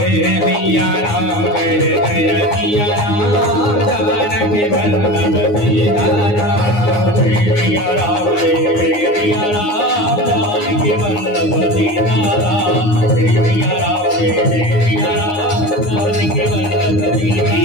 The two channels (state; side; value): late; right; 9.6 ms